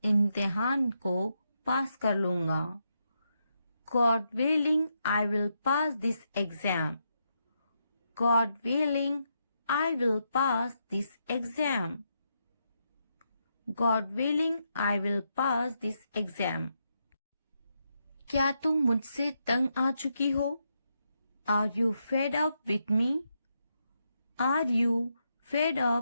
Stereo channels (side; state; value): both; inverted; correlation -0.82